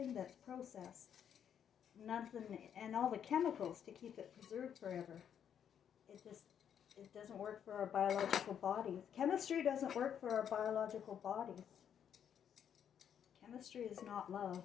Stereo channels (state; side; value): quieter; right; 8.7 dB